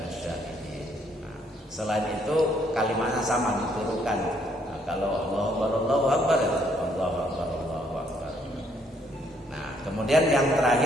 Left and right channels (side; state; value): both; normal; correlation 0.69